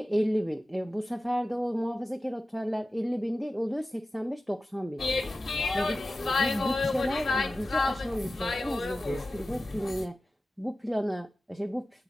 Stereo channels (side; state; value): both; normal; correlation 0.95